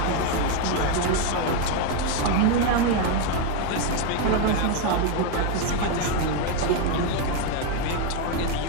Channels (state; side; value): different; both; correlation 0.02